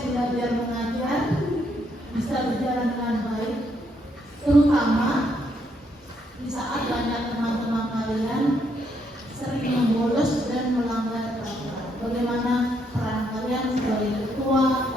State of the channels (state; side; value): normal; both; correlation 0.74